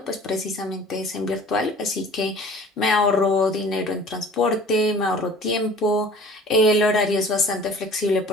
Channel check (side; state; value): both; normal; correlation 0.47